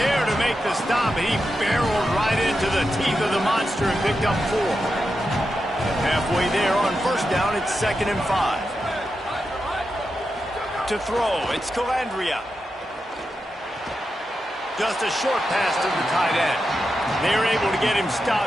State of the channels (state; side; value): normal; both; correlation 0.88